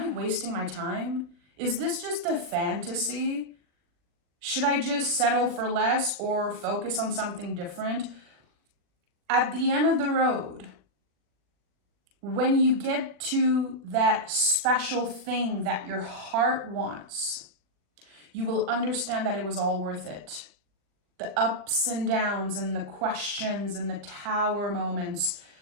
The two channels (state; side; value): late; left; 40 ms